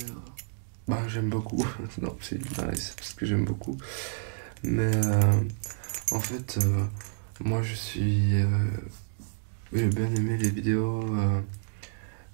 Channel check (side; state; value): left; silent; digital silence